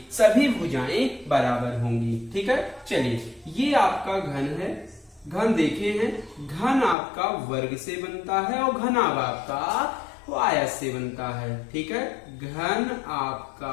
सभी भुजाएं बराबर होंगी। ठीक है, चलिए ये आपका घन है। घन देखे हैं, घन आपका वर्ग से बनता है और घनाभ आपका आयत से बनता है। ठीक है, घन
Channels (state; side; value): drops out; right; at 7.0 s